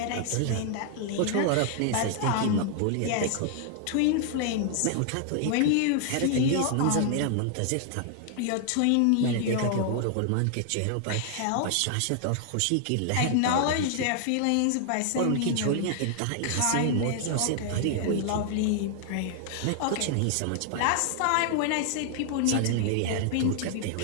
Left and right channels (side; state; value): both; different; correlation 0.00